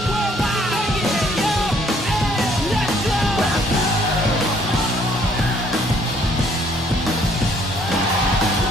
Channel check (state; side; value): normal; both; correlation 0.63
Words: Worldwide, yeah, yo, hey, let's go.